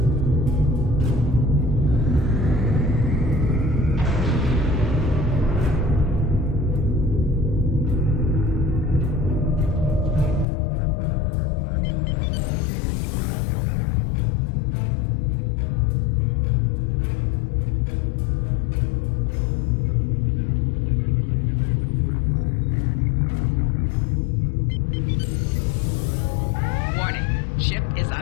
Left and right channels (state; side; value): drops out; right; at 10.5 s